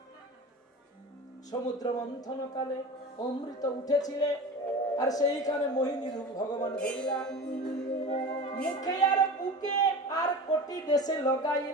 সমুদ্র মন্থন কালে অমৃত উঠেছিলে, আর সেইখানে মোহিনী রূপ ভগবান ধরিলা, মুখে আর বুকে আর কোটি দেশে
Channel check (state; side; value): normal; both; correlation 0.33